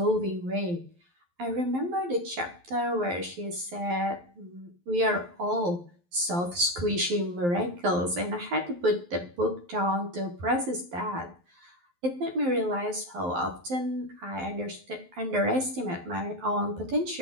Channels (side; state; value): left; late; 11 ms